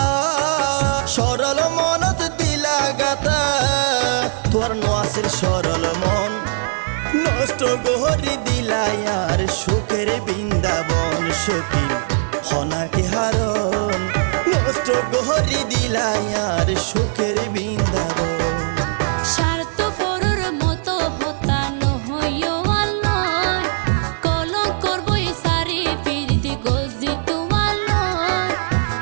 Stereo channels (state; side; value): silent; left; 57 dB below the other